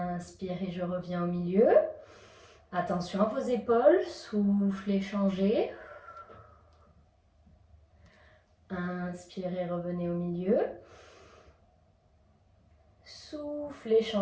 je reviens au milieu. Attention à vos épaules, soufflez, changez. Inspirez, revenez au milieu. Soufflez,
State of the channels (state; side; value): identical; both; correlation 1.00